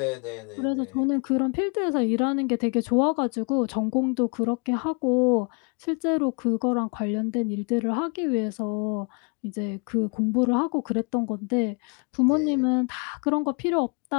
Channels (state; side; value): quieter; right; 35.2 dB